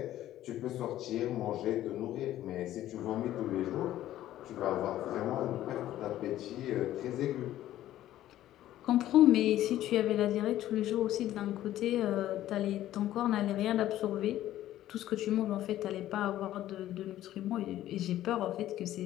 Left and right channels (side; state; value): right; quieter; 13.4 dB